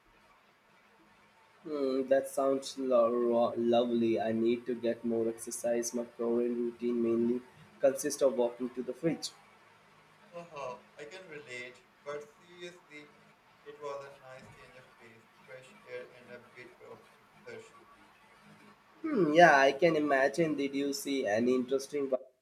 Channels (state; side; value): identical; both; correlation 1.00